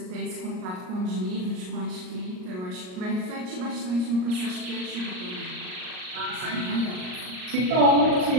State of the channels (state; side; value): late; left; 38 ms